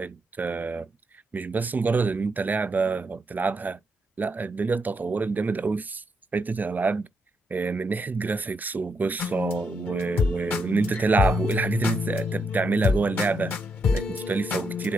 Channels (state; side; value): normal; both; correlation 0.80